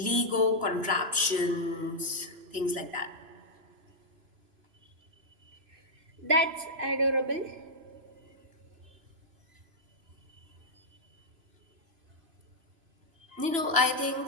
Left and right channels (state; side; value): late; left; 3.0 ms